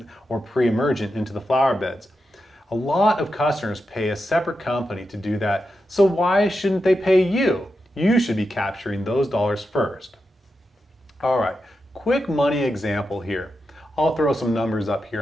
or pre-emergent into the flower beds. A lot of customers pay a separate company to do that, so why shouldn't they pay you? You should be capturing those dollars first. All right, quick money example here. I'll throw some numbers up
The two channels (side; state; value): both; normal; correlation 0.88